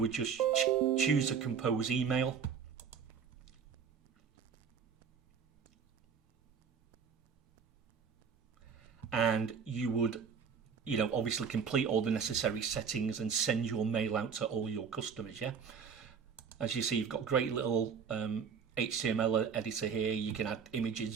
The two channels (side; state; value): left; quieter; 6.6 dB